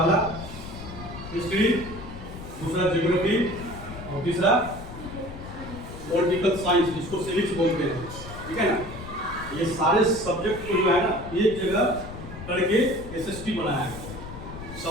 हिस्ट्री, दूसरा ज्योग्राफी और तीसरा पॉलिटिकल साइंस जिसको सिविक्स बोलते हैं, ठीक है ना। ये सारे सब्जेक्ट को जो है ना एक जगह करके एसएसटी बनाया है,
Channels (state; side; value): noise; left; rumble, 12 dB below the sound